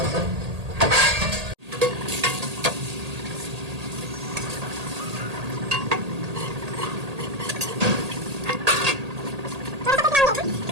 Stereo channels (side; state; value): left; late; 1.8 ms